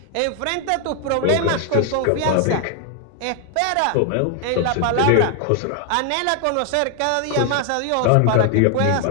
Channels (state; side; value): different; both; correlation 0.00